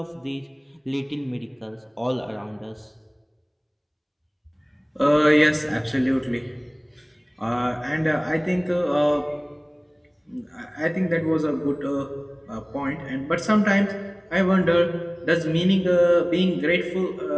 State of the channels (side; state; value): both; identical; correlation 1.00